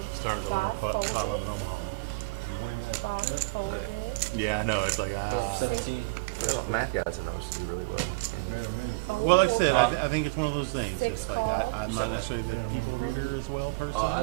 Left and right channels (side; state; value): left; quieter; 25.9 dB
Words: Start 5 going folded. in Omaha. 5 folded. Yeah, I know. It's like We're up 17. math guys know us do really well. Well, like I said, I think it's one of those things. 6 It's like, calls. I'm not necessarily better as well. I